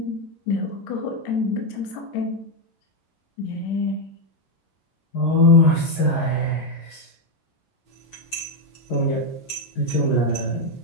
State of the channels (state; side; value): late; right; 11 ms